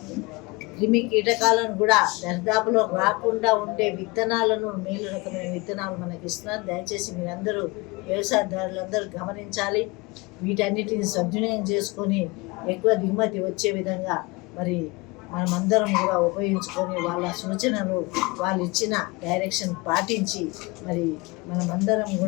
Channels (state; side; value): quieter; right; 25.2 dB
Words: క్రిమి కీటకాలను కూడా దరిదాపులో రాకుండా ఉండే విత్తనాలను, మేలు రకమైన విత్తనాలు మనకి ఇస్తున్నారు। దయచేసి మీరందరూ వ్యవసాయదారులందరూ గమనించాలి, వీటన్నిటిని సద్వినియోగం చేసుకొని ఎక్కువ దిగుమతి వచ్చే విధంగా మరి మనమందరం కూడా ఉపయోగించుకొని, వాళ్ళ సూచనలు, వాళ్ళు ఇచ్చిన డైరెక్షన్ పాటించి మరి మనమందరం